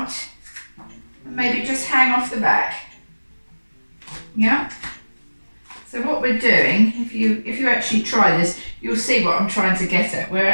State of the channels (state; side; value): inverted; both; correlation -1.00